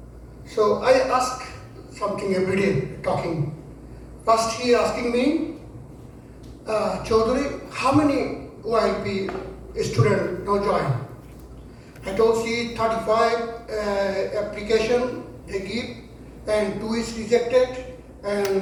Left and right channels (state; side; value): identical; both; correlation 1.00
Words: so I ask something every day, talking. First he asking me, Chaudhary, how many OIP student now join. I told see 35 application they give and 2 is rejected